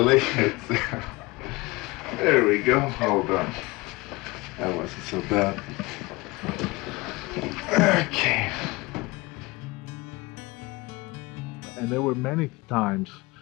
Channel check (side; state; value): right; quieter; 23.3 dB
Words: There we go. Hold on. That wasn't so bad. Okay. And there were many times